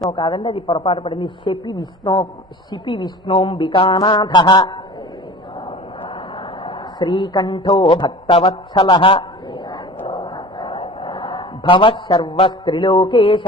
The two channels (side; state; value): both; normal; correlation 0.39